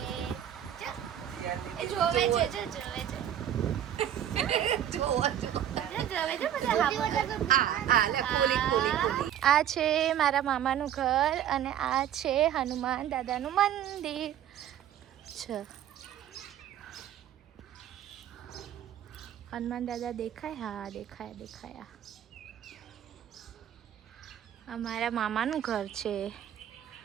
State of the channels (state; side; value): quieter; left; 10.5 dB